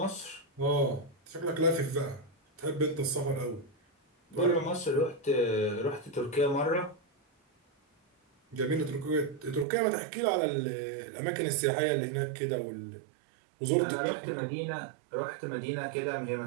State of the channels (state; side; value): drops out; left; at 9.7 s